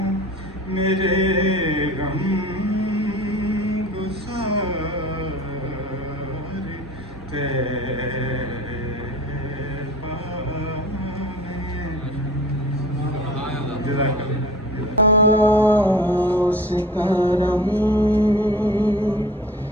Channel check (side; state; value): both; normal; correlation 0.41